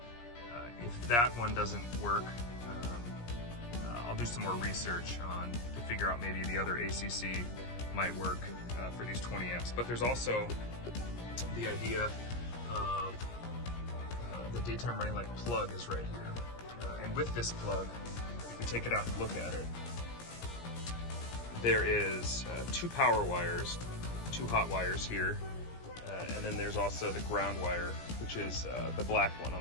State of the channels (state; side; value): late; right; 17 ms